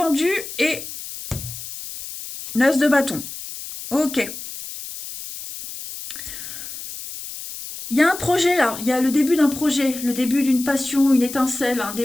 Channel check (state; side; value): noise; left; hiss, 10 dB below the sound